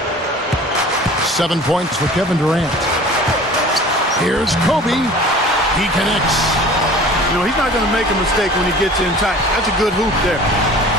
7 points for Kevin Durant. Here's Kobe. He connects. You know, he's not going to make a mistake when he gets in tight. That's a good hoop there.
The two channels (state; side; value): normal; both; correlation 0.44